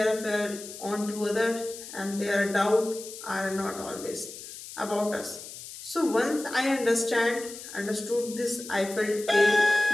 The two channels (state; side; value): noise; left; hiss, 13 dB below the sound